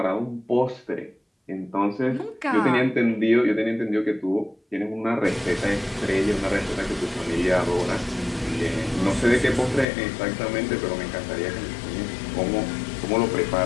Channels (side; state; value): right; drops out; at 9.9 s